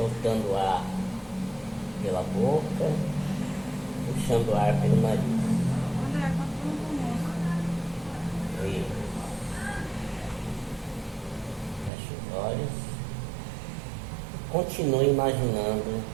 o ar pela boca, puxando o ar pelo nariz. Isso. Feche os olhos. Continue imaginando.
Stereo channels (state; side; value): drops out; left; at 11.9 s